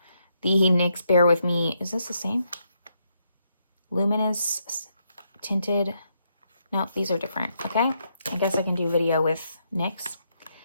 The NYX Bear With Me, is this the same? Luminous Tinted. No, these are different, okay? I guess I can do video with NYX.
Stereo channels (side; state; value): both; inverted; correlation -0.78